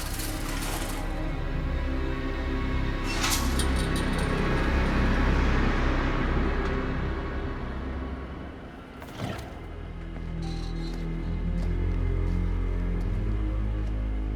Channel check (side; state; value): both; identical; correlation 1.00